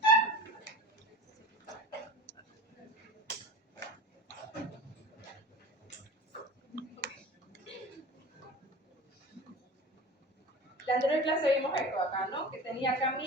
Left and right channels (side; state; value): both; normal; correlation 0.36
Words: La anterior clase vimos esto acá, ¿no? Que tenía acá